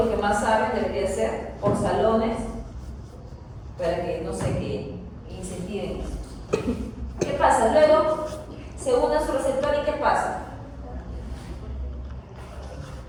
que más saben debería ser por salones, para que, no sé, que incentiven eso. ¿Qué pasa? Luego se une a su receptor y ¿qué pasa?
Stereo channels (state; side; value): identical; both; correlation 1.00